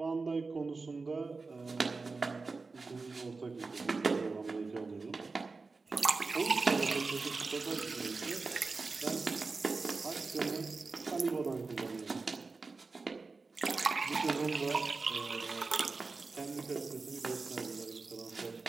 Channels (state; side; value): quieter; left; 4.1 dB